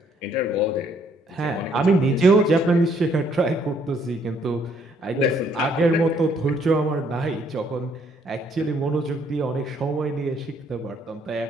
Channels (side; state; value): both; normal; correlation 0.67